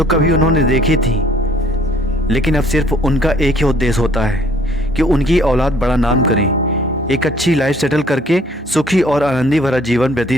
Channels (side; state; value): both; normal; correlation 0.59